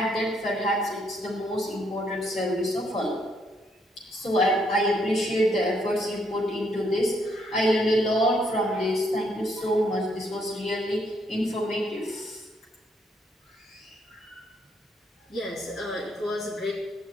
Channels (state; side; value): normal; both; correlation 0.72